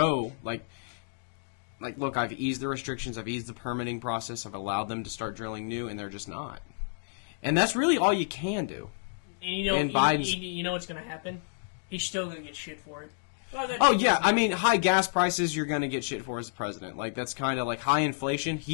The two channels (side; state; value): right; silent; digital silence